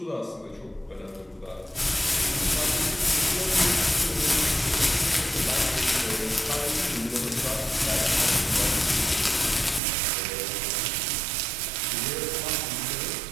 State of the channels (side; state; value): left; drops out; at 9.8 s